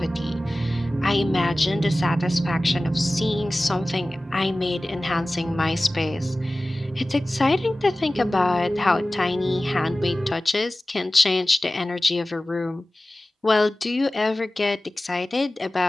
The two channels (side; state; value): both; normal; correlation 0.97